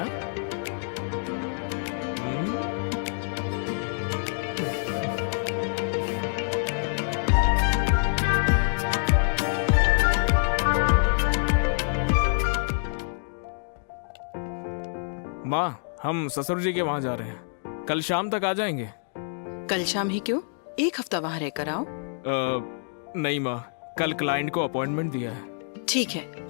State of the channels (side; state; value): right; silent; digital silence